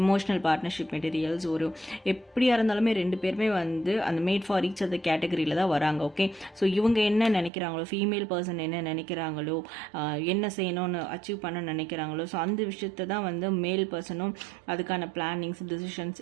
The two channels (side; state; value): left; drops out; at 7.5 s